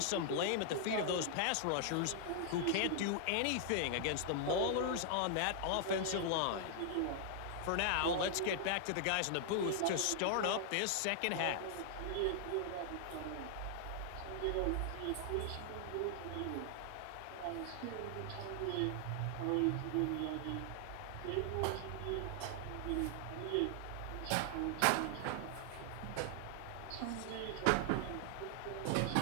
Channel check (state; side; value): different; both; correlation 0.00